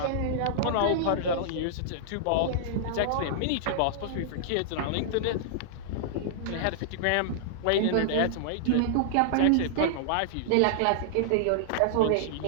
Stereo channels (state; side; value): different; both; correlation -0.01